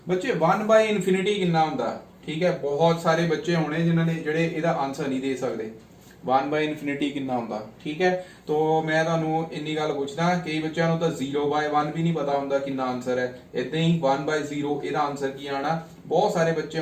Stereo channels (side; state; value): both; identical; correlation 1.00